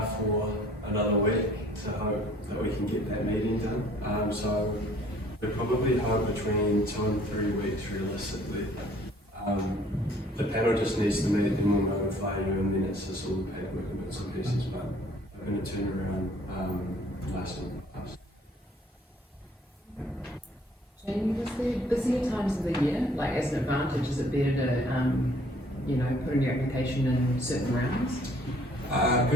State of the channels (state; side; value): normal; both; correlation 0.58